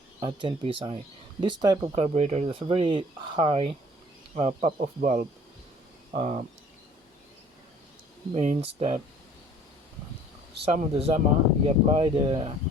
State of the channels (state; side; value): normal; both; correlation 0.53